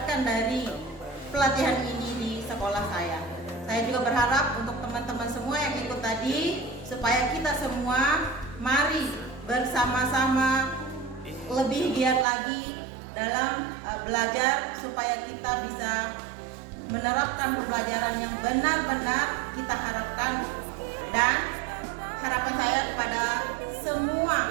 dari pelatihan ini di sekolah saya. Saya juga berharap untuk teman-teman semua yang ikut tadi, supaya kita semua mari bersama-sama lebih giat lagi dalam belajar, supaya kita bisa menerapkan pembelajaran yang benar-benar kita harapkan. Dan harapan saya kepada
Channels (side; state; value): left; drops out; at 12.2 s